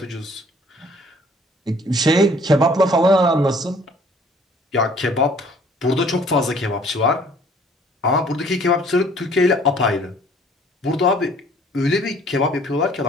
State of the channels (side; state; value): both; normal; correlation 0.56